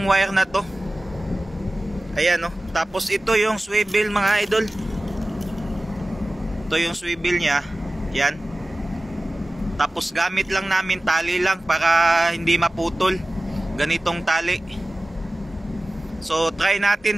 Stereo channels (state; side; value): normal; both; correlation 0.97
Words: wire na to. Ayan, no. Tapos ito yung swivel mga idol. Ito yung swivel niya. Yan. Tapos gamit lang namin tali lang para hindi maputol. Ganitong tali. So try